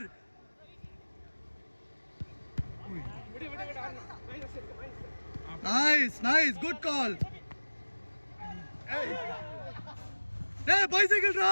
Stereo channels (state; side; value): inverted; both; correlation -1.00